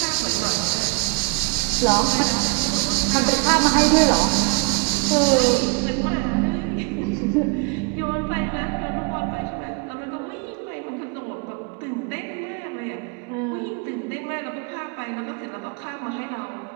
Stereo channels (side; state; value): left; quieter; 28.9 dB